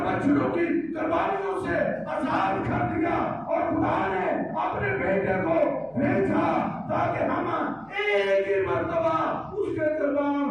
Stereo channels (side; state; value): left; noise; hum, 29 dB below the sound